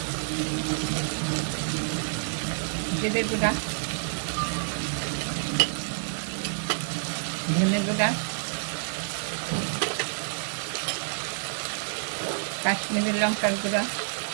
জিরে গুঁড়া, ধনে গুঁড়া, কাশ্মীরি লঙ্কার গুঁড়া,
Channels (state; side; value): silent; left; digital silence